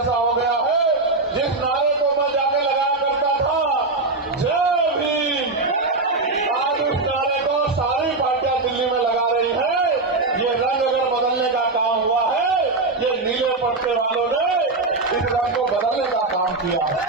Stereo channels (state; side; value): quieter; left; 3.4 dB